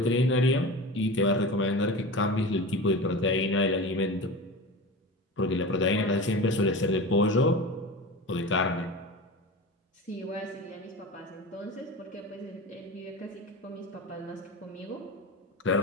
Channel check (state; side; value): normal; both; correlation 0.30